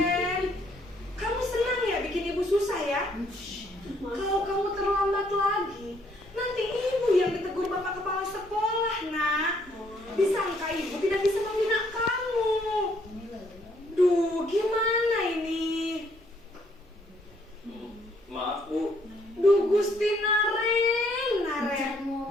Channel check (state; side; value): normal; both; correlation 0.67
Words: kamu senang ya bikin ibu susah ya? Kalau kamu terlambat lagi, nanti ibu yang ditegur bapak kepala sekolah, nak. Disangka ibu tidak bisa membina kamu. Duh, gimana ini? Maaf, Bu. Duh, Gusti Naren,